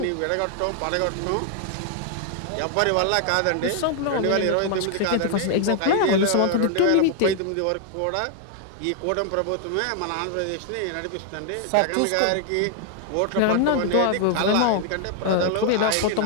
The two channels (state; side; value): different; both; correlation 0.00